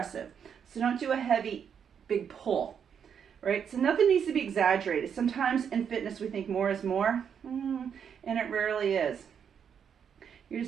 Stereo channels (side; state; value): left; quieter; 7.6 dB